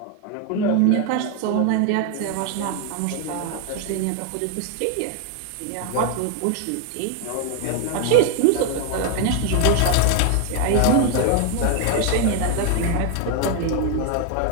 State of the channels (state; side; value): different; both; correlation 0.01